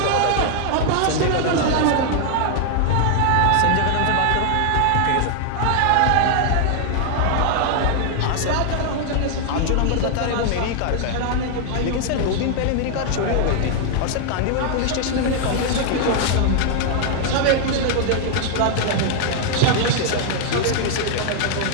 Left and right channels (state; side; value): different; both; correlation 0.00